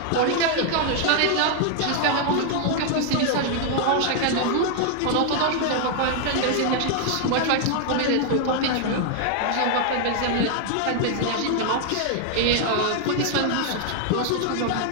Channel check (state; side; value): different; both; correlation 0.00